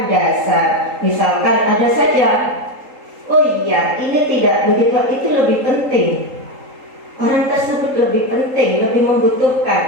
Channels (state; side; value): late; left; 3.8 ms